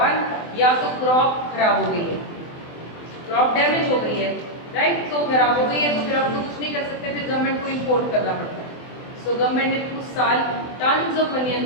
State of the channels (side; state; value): right; late; 24 ms